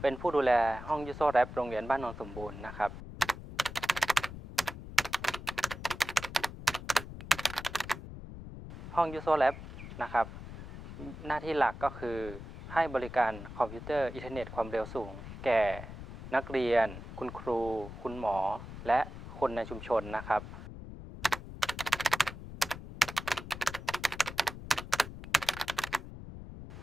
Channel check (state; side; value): noise; left; rumble, 11 dB below the sound